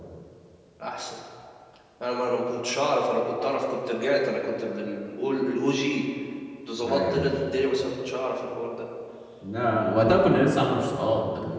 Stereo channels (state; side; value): identical; both; correlation 1.00